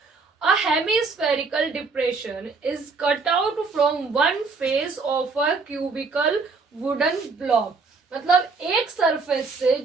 A hemispherical depression is cut out from one face of a cubical wooden block. मतलब एक सरफेस से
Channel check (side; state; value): left; quieter; 4.4 dB